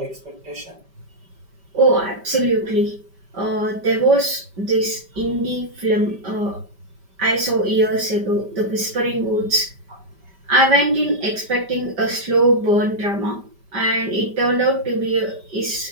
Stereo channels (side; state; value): left; late; 5.1 ms